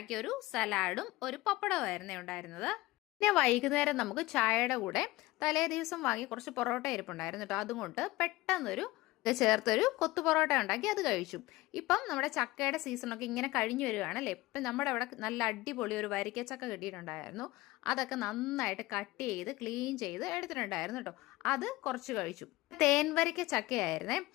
ഒരു സലാഡും ഒരു പപ്പടമായിരുന്നു ഉണ്ടായിരുന്നത്. പിന്നെ വൈകുന്നേരം നമുക്ക് ചായയുടെ കൂടെ തലേ ദിവസം വാങ്ങി കുറച്ച് പൊറോട്ട ഇരിപ്പുണ്ടായിരുന്നു കേട്ടോ. അതുകൊണ്ട് പെട്ടെന്നൊരു ചേർത്തൊരു കൊത്തു പൊറോട്ട ഉണ്ടാക്കി അത് കഴിച്ചു. ഇപ്പം നമ്മുടെ ചക്കയുടെ സീസണൊക്കെ ഇങ്ങനെ കഴിഞ്ഞു വരികയാണല്ലേ. ഇപ്പം നമ്മുടെ അവിടെ നല്ല അടിപൊളി ഒരു വരിക്കച്ചക്ക കിട്ടിയിട്ടുണ്ടായിരുന്നു. അതൊക്കെ നന്നായിട്ട് കട്ട് ചെയ്ത് ക്ലീൻ ചെയ്ത് എടുത്തിട്ടുണ്ടായിരുന്നു കേട്ടോ. അത് കുറച്ച് കഴിച്ചു. തേൻ വരിക്ക ചക്കയായിരുന്നേ.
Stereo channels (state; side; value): quieter; right; 19.2 dB